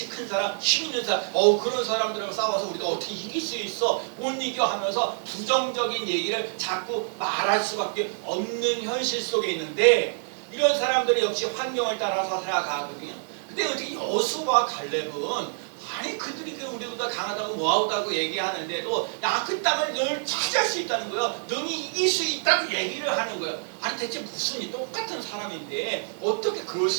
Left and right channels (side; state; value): left; silent; 60 dB below the other